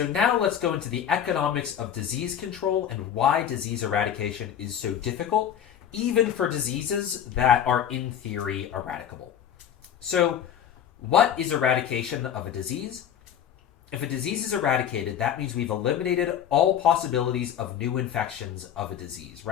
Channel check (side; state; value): right; quieter; 9.4 dB